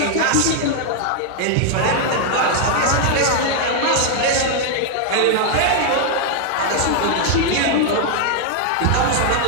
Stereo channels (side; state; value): both; different; correlation 0.00